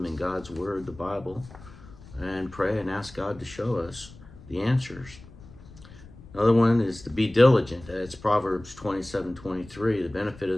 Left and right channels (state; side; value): noise; left; rumble, 19 dB below the sound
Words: in God's Word, the Bible, and pray and ask God to show us the answers. Another one is to be diligent. That's Proverbs 27:23. The benefit of